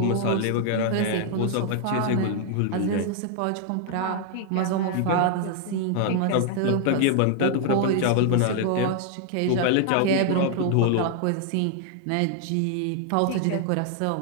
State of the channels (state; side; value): different; both; correlation 0.00